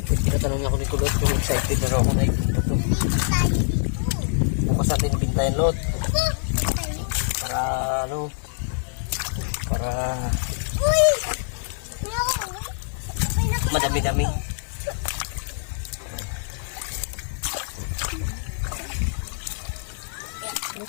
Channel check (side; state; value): right; silent; digital silence